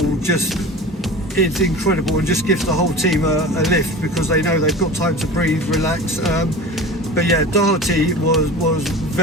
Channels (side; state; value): both; normal; correlation 0.35